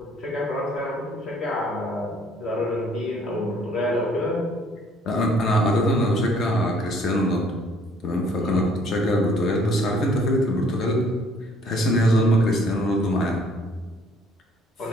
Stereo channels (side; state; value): both; normal; correlation 0.60